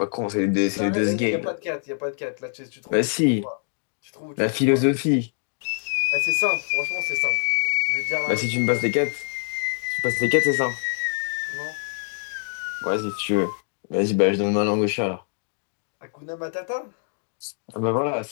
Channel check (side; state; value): right; silent; digital silence